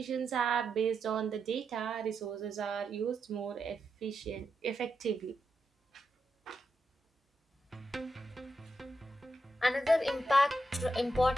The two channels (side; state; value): both; normal; correlation 0.85